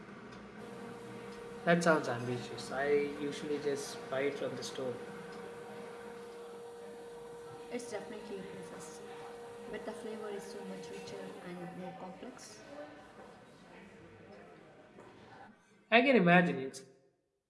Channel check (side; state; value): both; identical; correlation 1.00